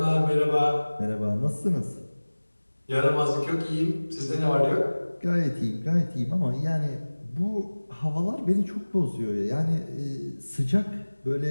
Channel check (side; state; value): both; inverted; correlation -1.00